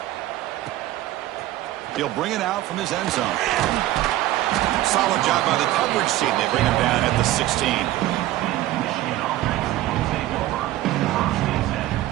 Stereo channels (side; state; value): left; quieter; 15.3 dB